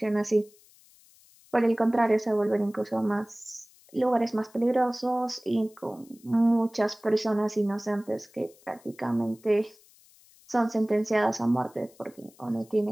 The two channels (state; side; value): noise; left; hiss, 28 dB below the sound